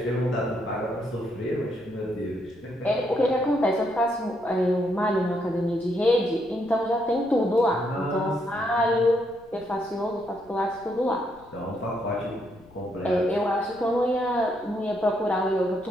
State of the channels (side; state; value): left; noise; rumble, 27 dB below the sound